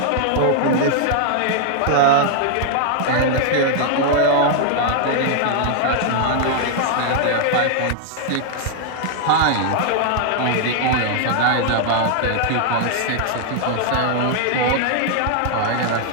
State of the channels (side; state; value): both; different; correlation 0.00